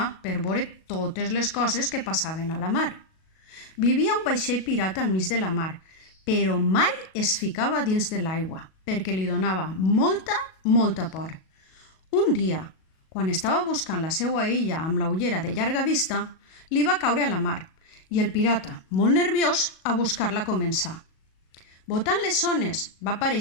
per veure totes les coses que passaven a la mar. Vivia un vaixell pirata al mig de la mar, però mai es ficava dins de l'aigua, perquè li donava molta por. Un dia, quan estava buscant la seva illa amb la ullera de llarga vista, li va caure a la mar i el pirata, molt nerviós, a buscar-la començar. Botant les ones va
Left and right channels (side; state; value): right; late; 37 ms